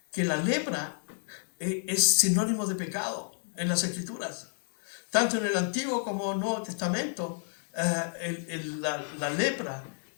que la lepra es sinónimo de pecado en las Escrituras. Tanto en el Antiguo como en el Nuevo Testamento, la lepra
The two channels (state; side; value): silent; right; digital silence